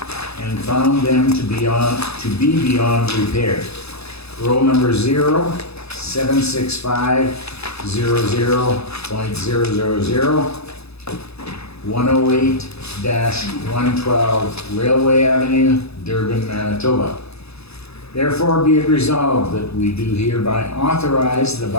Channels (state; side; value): late; right; 0.79 ms